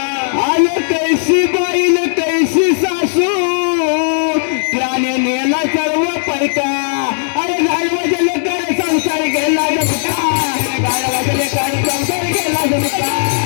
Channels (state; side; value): silent; right; digital silence